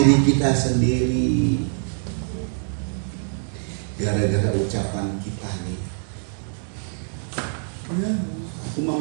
kita sendiri gara-gara ucapan kita nih. Ya, aku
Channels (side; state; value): left; silent; 60 dB below the other